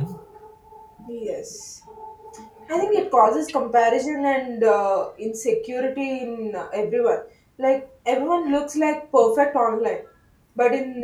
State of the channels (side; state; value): both; identical; correlation 1.00